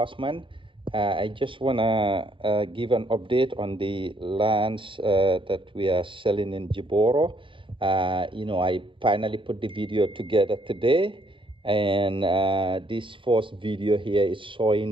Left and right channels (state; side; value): late; left; 0.25 ms